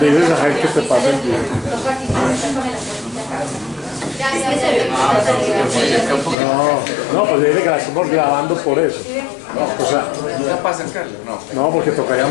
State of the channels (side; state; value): right; drops out; at 6.4 s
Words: a Jaime que te pase. No, pues dile que la estamos grabando por eso. No, o sea, ¿no para acercarlo? No. No, porque tocaría